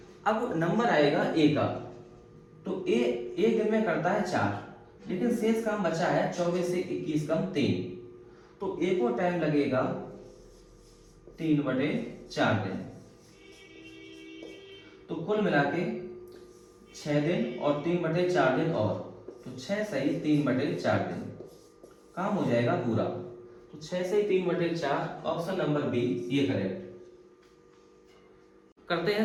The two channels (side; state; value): both; identical; correlation 1.00